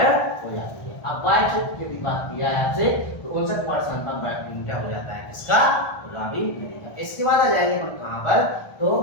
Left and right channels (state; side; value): late; right; 1.4 ms